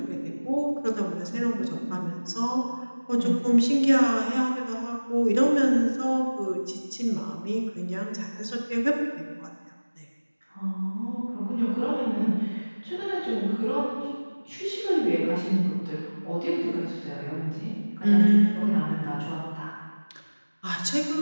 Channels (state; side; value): inverted; both; correlation -1.00